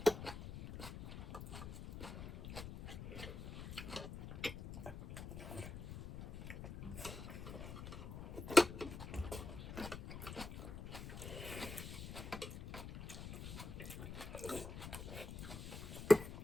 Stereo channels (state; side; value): noise; left; rumble, 8 dB below the sound